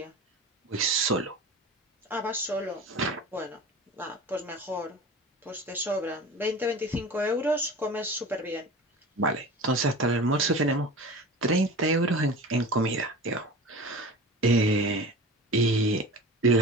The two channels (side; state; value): both; normal; correlation 0.35